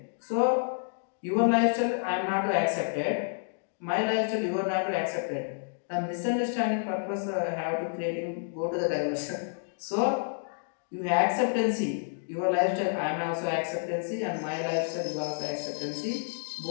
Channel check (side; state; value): right; silent; digital silence